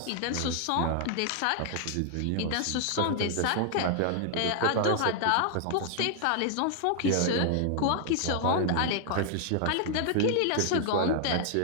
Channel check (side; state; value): both; different; correlation 0.00